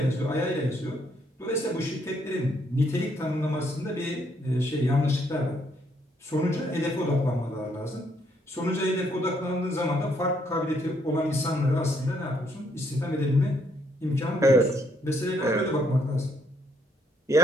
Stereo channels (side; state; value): both; normal; correlation 0.71